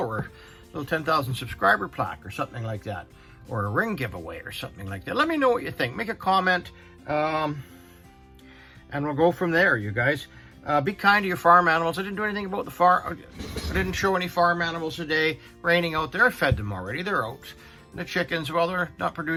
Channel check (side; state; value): both; identical; correlation 1.00